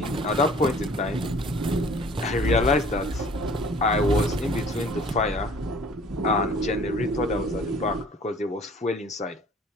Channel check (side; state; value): both; normal; correlation 0.51